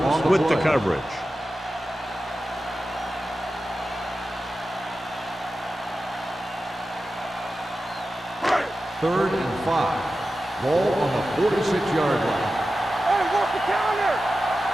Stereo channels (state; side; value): normal; both; correlation 0.93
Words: with the coverage. Third and 5. Ball on the 46-yard line. Hey, work the counter.